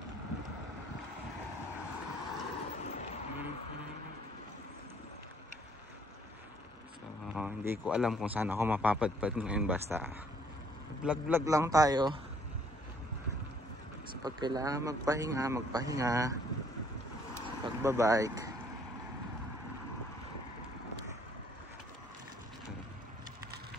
Hindi ko alam kung saan ako mapapadpad ngayon, basta vlog lang tayo. So pag kailangan magpahinga sa pagbabike.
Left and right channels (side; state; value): both; normal; correlation 0.63